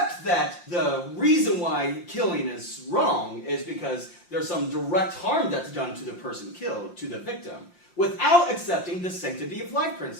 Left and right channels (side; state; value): right; late; 5.7 ms